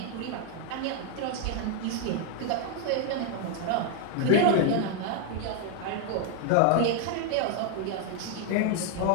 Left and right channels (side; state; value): both; different; correlation 0.00